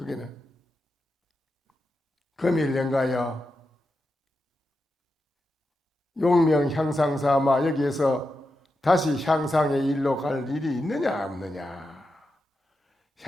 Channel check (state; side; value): normal; both; correlation 0.88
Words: 금일연가여 용명 향상사마 여기에서 다시 향상의 일로 갈 일이 있느냐 없느냐.